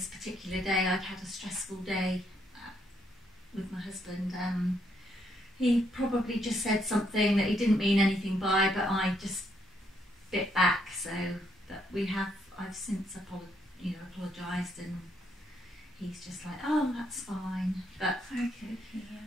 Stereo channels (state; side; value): normal; both; correlation 0.74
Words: particular day I'd had a stressful day with my husband. He probably just said something that he didn't mean anything by, but I just bit back. So that I've since apologised, and he's just like, oh, that's fine. But Okay,